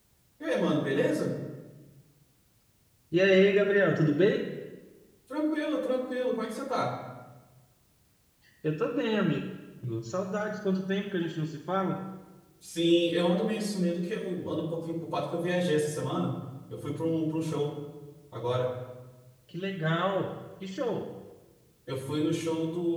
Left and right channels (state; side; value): identical; both; correlation 1.00